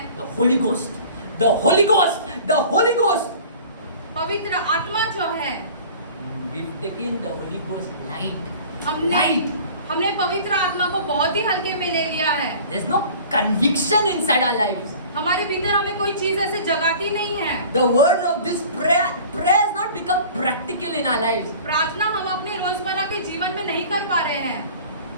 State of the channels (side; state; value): both; inverted; correlation -0.44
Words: the Holy Ghost, the Holy Ghost, the Holy Ghost. पवित्र आत्मा जो है, We've taken the Holy Ghost light. हमने हमने पवित्र आत्मा को बहुत ही हल्के में ले लिया है। There's no conviction inside our lives. हमारे भीतर हमें कोई चीज ऐसे जगाती नहीं है। The words of this prayer has not become practical in our lives. प्रार्थना हम अपने रोजमर्रा के जीवन में नहीं कर पा रहे हैं।